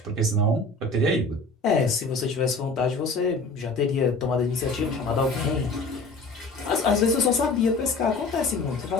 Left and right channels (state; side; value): quieter; right; 3.2 dB